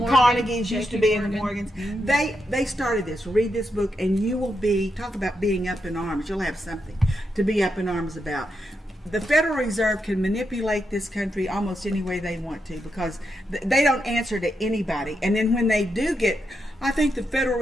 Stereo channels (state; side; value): normal; both; correlation 0.84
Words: Carnegies used to JP be in the Morgan. Morgans. They started this. Read this book, and you will talk about being up in arms. You'll have something to be up in arms about. the Federal Reserve can manipulate this country almost any way they want to, because they don't answer to anybody. And then when they do get, I think the Federal